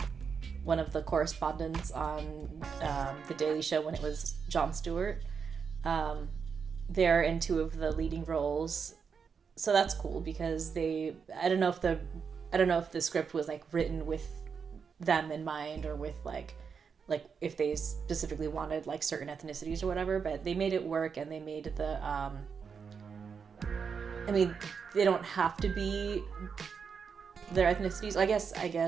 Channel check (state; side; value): quieter; left; 6.1 dB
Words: one of the correspondents on The Daily Show when it was Jon Stewart. They're in 2 of the leading roles, so that's cool because I don't know if the script was like written with them in mind or with like if they specifically wanted like certain ethnicities or whatever, but they made it work, and they made the I mean, they don't have to be their ethnicities. I guess